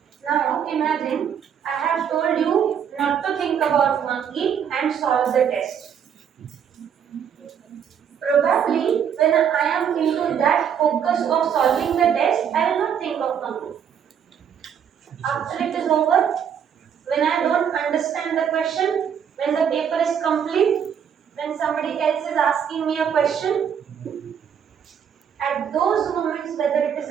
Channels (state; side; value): quieter; left; 8.1 dB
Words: Now, imagine I have told you not to think about monkey and solve the test. Probably, when I am into that focus of solving the test, I will not think of monkey. After it is over, when I don't understand the question, when the paper is complete, when somebody else is asking me a question, at those moments whether it is